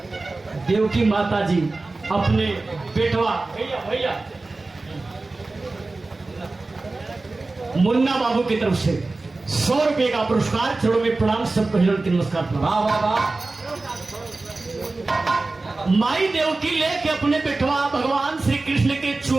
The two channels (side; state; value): left; quieter; 3.3 dB